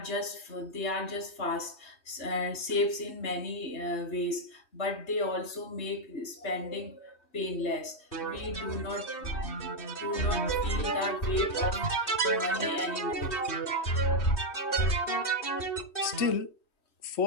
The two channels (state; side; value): late; right; 3.2 ms